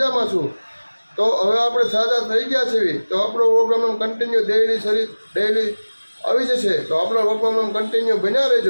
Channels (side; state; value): both; inverted; correlation -1.00